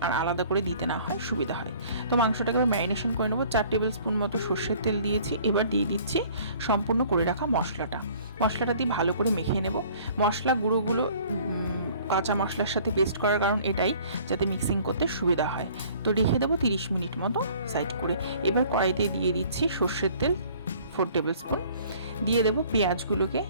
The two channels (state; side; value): inverted; both; correlation -0.53